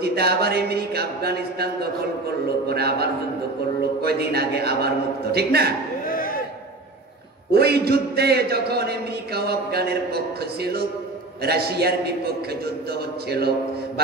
আবার আমেরিকা আফগানিস্তান দখল করলো, পরে আবার যুদ্ধ করলো, কয়দিন আগে আবার মুক্ত, ঠিক না? ওই যুদ্ধে যখন আমেরিকা ও আফগানের পক্ষ ছিল, রাশিয়ার বিপক্ষে যুদ্ধ হচ্ছিল,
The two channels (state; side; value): quieter; left; 3.0 dB